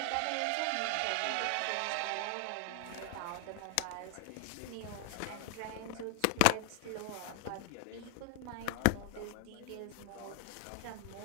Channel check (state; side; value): different; both; correlation 0.00